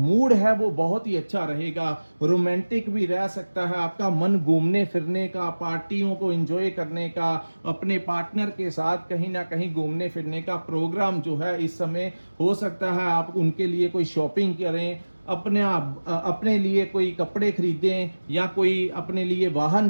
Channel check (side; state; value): both; inverted; correlation -1.00